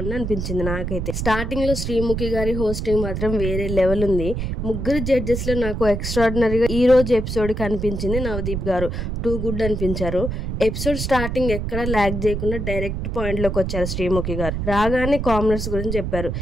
అనిపించింది నాకైతే. స్టార్టింగ్ లో శ్రీముఖి గారి హోస్టింగ్ మాత్రం వేరే లెవెల్ ఉంది. ముగ్గురు జడ్జెస్ లో నాకు ఎక్స్ట్రాడినరీగా ఈ రోజు ఎపిసోడ్ కి అనిపించింది నవదీప్ గారు. టూ గుడ్ అనిపించారు. ఎపిసోడ్ స్టార్టింగ్ ఎక్కడ ల్యాగ్ చేయకుండా డైరెక్ట్ పాయింట్ లోకి వచ్చారు శ్రీముఖి గారు. రాగానే కామనర్స్ గురించి చెప్పారు.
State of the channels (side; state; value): right; noise; rumble, 3 dB below the sound